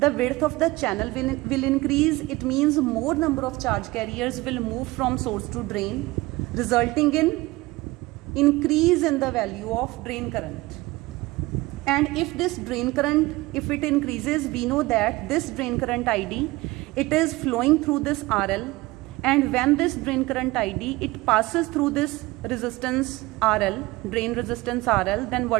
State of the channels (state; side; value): quieter; left; 20.6 dB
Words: width of the channel will increase, it means more number of charge carriers will move from source to drain, resulting in increase in the value of drain current. And if this drain current, if it increases, we know that this drain current ID, it is flowing through this RL, and when this drain current ID, it passes through this resistance RL, drain resistance RL, then